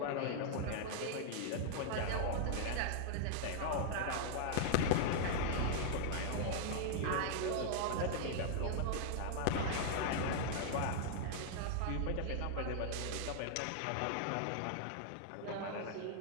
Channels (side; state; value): both; different; correlation 0.00